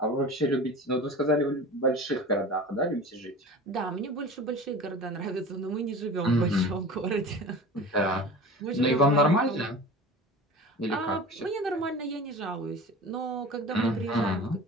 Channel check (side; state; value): both; normal; correlation 0.36